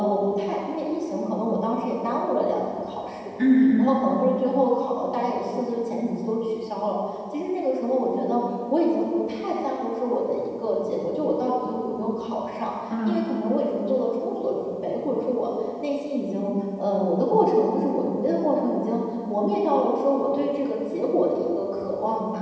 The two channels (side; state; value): both; identical; correlation 1.00